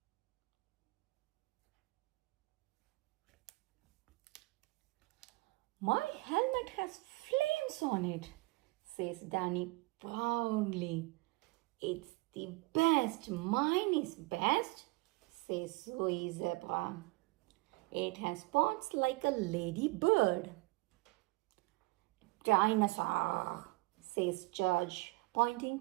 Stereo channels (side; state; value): left; quieter; 23.4 dB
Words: My helmet has flames on it, says Danny proudly. It's the best. Mine is best, says Zoe Zebra. It has spots like a ladybird. Dinosaur, says George, pointing